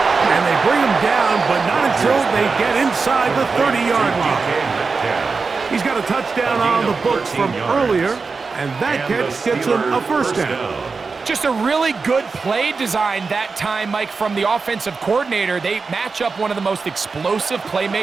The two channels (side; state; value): left; quieter; 4.6 dB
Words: And they bring him down, but not until they get inside the 30-yard line. He's got a touchdown on the books from earlier, and that catch gets him a first down. Just a really good play design that time, Mike, from the offensive coordinator. They match up one of the most explosive